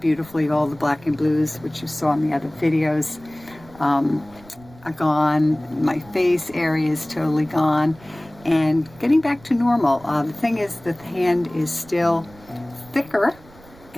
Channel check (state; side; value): noise; right; rumble, 23 dB below the sound